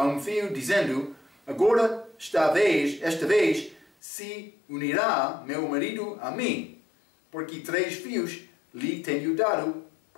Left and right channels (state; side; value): drops out; right; at 3.9 s